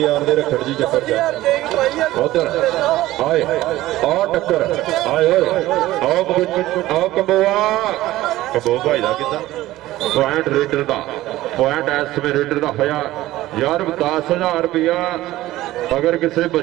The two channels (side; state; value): left; quieter; 16.2 dB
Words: ਦੇ ਰੱਖੜ ਜੀ ਚੱਕਰ ਚ ਉਧਰ ਆਏ ਆ ਟੱਕਰ ਆਏ ਓਏ ਆਓ ਕੰਬੋ ਭਾਈ ਦਾ ਕਿੱਦਾਂ ਪੁਆਇੰਟ ਰੇਡਰ ਦਾ ਪੁਆਇੰਟ ਇਸ ਸਮੇਂ ਰੇਡਰ ਦਾ ਹੋਇਆ ਯਾਰ 10,000 ਰੁਪਇਆ ਅਗਰ ਕਿਸੇ